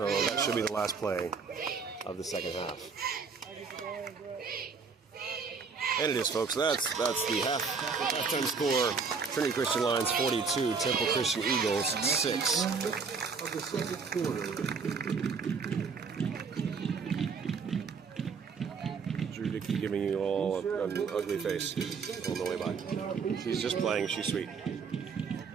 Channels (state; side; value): quieter; left; 5.2 dB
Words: that should be the last play of the second half. And it is, folks. That's the halftime score. Trinity Christian Lions 42, Temple Christian Eagles 6. Of the second quarter. Drew Dickey giving you all an ugly face on the way by. She's just playing. She's sweet.